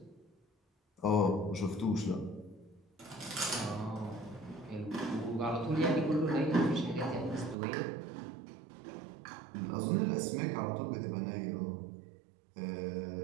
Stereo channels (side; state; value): left; drops out; at 7.6 s